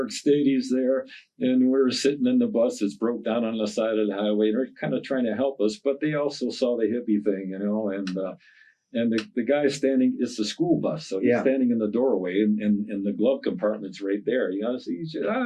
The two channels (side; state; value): both; identical; correlation 1.00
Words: Stadies there, and we're sitting in the bus that's broke down on the side of the highway. They're kind of trying to help us, but they also saw the hippie thing, you know, And the guy standing, it's the school bus. So he's standing in the doorway and the glove compartment's right there. You know, so he's just,